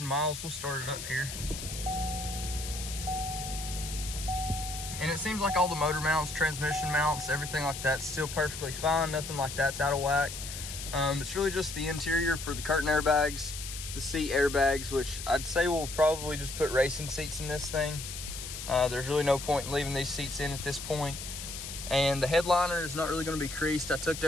miles. We'll start it up here. And it seems like all the motor mounts, transmission mounts, everything like that's still perfectly fine. Nothing like that's out of whack. It's really just the interior for the curtain airbags, the seat airbags, which I'd say we'll probably just put racing seats in this thing. There's really no point in leaving these seats in at this point. And the headliner is not really going to be creased. I tucked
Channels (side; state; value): left; noise; hiss, 8 dB below the sound